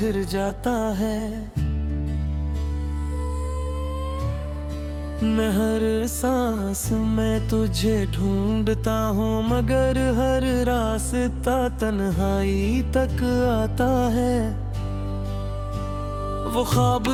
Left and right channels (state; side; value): identical; both; correlation 1.00